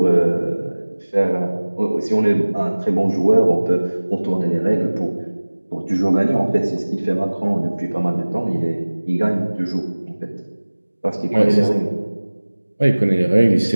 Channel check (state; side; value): inverted; both; correlation -1.00